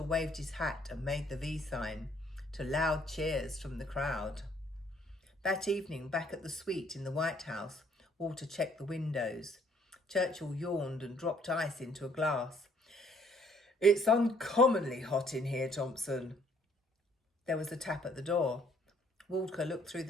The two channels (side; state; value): both; normal; correlation 0.63